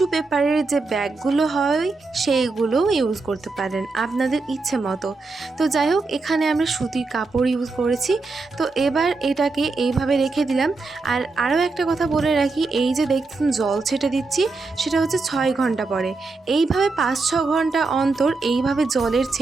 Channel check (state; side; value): quieter; left; 3.8 dB